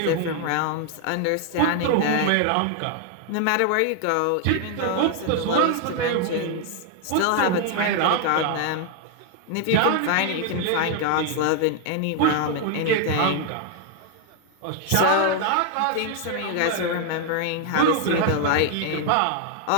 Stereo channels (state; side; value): different; both; correlation 0.00